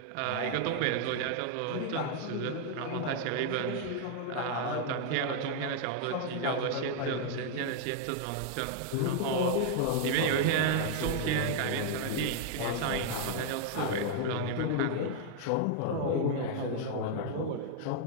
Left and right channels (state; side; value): different; both; correlation 0.00